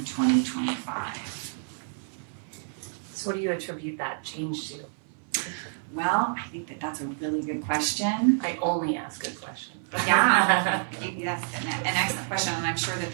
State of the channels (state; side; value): silent; left; 59 dB below the other